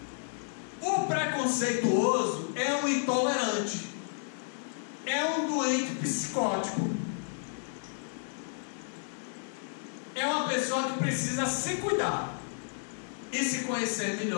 o preconceituoso é um intolerante, é um doente psicótico, é uma pessoa que precisa se cuidar e se conhecer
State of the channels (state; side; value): silent; right; digital silence